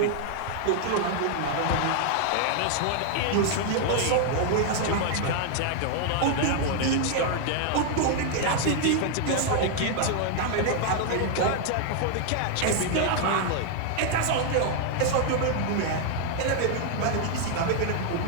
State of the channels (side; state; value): both; different; correlation 0.00